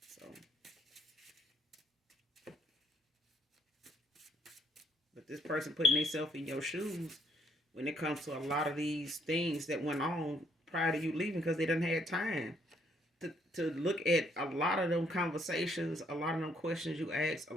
but this person putting themselves in your shoes when it comes to a lot of these things that went on prior to you leaving, because they done had time to look at a lot of them conversations, a lot of them questions you asked, a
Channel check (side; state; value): both; normal; correlation 0.68